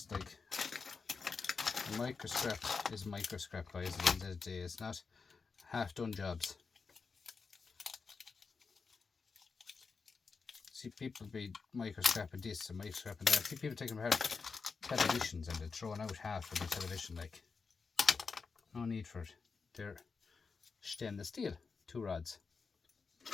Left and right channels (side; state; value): right; quieter; 4.9 dB